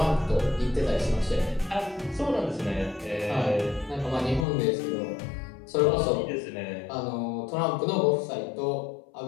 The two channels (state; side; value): drops out; right; at 4.5 s